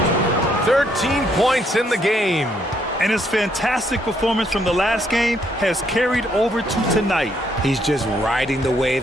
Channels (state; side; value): normal; both; correlation 0.71